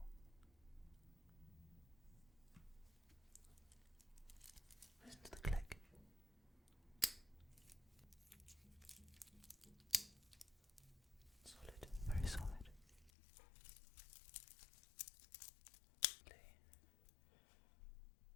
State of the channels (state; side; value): drops out; right; at 13.1 s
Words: Listen to the click. Solid, very solid.